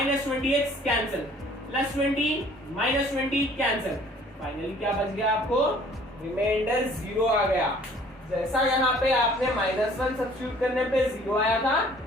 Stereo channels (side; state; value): both; normal; correlation 0.54